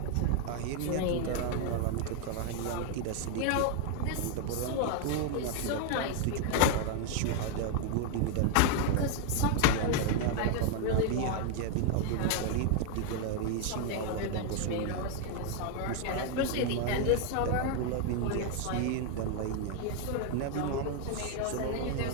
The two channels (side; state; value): both; different; correlation 0.00